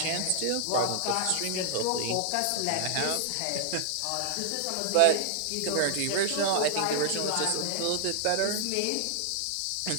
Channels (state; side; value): different; both; correlation -0.01